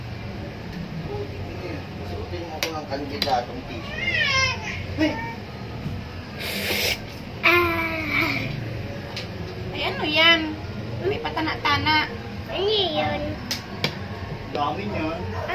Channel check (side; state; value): both; identical; correlation 1.00